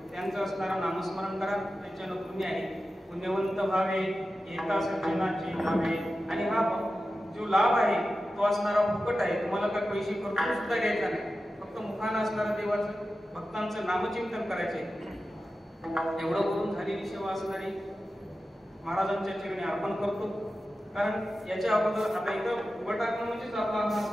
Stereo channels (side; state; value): both; normal; correlation 0.93